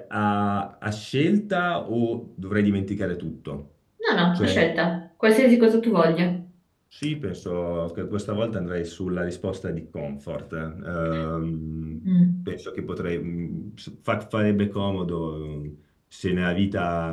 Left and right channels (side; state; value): both; identical; correlation 1.00